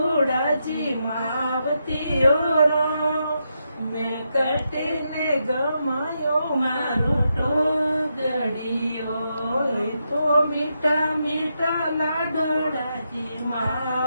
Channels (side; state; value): both; inverted; correlation -0.83